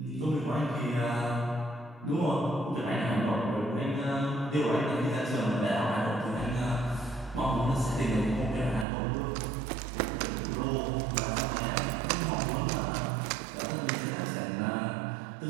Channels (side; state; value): left; drops out; at 8.8 s